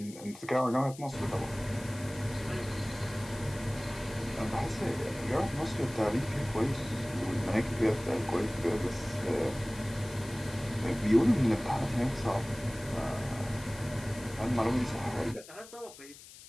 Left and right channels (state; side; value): noise; left; hiss, 18 dB below the sound